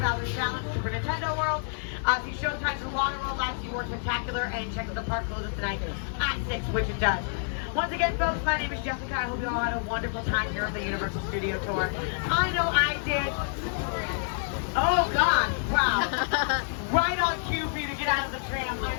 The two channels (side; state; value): right; silent; digital silence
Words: Challenge, Super Nintendo World. See showtimes for Water World, Live Sea War Spectacular, and check out the park closes tonight at 6, which it does. Once again, folks, my name is Jessica. I hope you all had a wonderful time here at the Universal Studio Tour. I know I did. Oh, God. Wow. Right on cue for you to get out of the tram. I'm